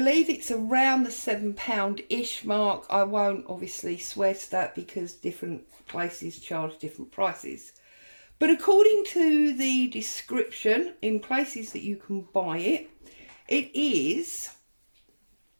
it's around the £7-ish mark. I won't obviously swear to that because different places charge different prices. But according to the description in places that you can buy it, it is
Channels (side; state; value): both; inverted; correlation -1.00